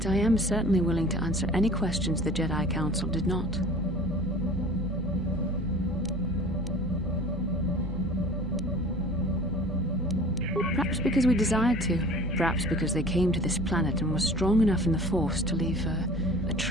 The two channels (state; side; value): normal; both; correlation 0.44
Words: I am certainly willing to answer any questions the Jedi Council did not. Perhaps because we desired to. Perhaps because they came to this planet and were strong enough in the Force to leave a